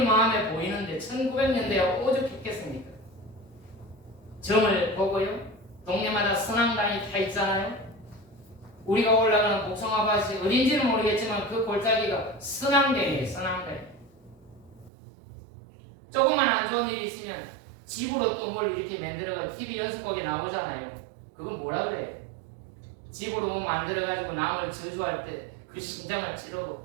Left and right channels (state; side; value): drops out; left; at 14.9 s